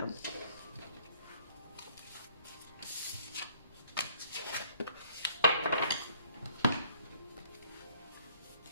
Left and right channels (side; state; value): both; inverted; correlation -0.60